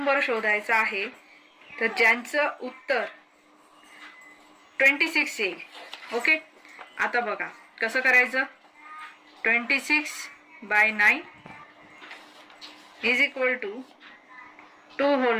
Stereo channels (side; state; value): both; identical; correlation 1.00